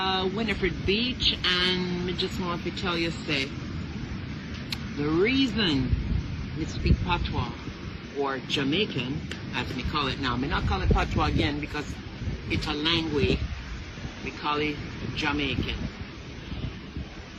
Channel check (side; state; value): both; identical; correlation 1.00